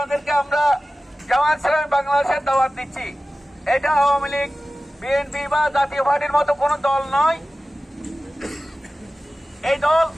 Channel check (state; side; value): normal; both; correlation 0.96